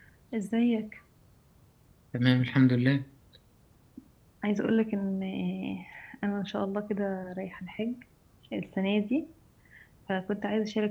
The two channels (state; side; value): identical; both; correlation 1.00